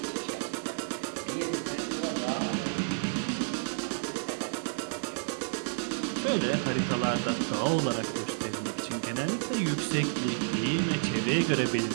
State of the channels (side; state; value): left; silent; digital silence